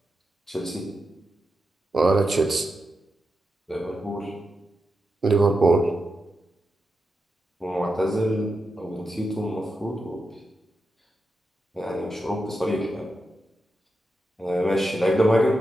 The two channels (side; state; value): both; normal; correlation 0.88